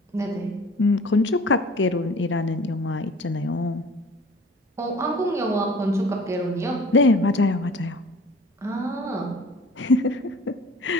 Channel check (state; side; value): normal; both; correlation 0.46